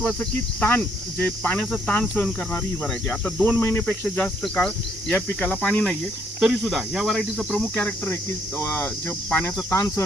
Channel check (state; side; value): normal; both; correlation 0.70